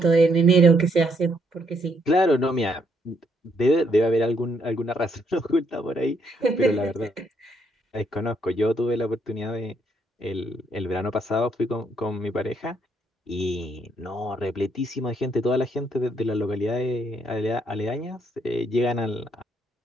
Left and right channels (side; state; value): both; normal; correlation 0.72